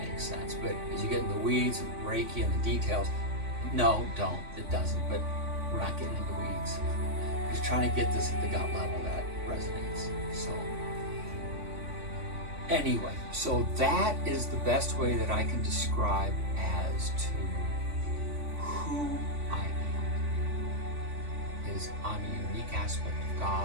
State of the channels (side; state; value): left; late; 3.5 ms